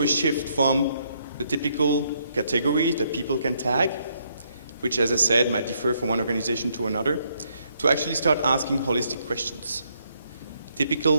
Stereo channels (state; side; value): inverted; both; correlation -0.73